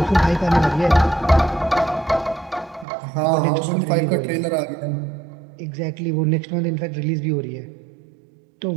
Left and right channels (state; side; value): drops out; left; at 2.9 s